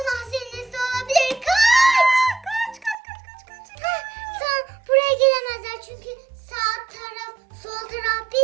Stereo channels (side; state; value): left; drops out; at 3.0 s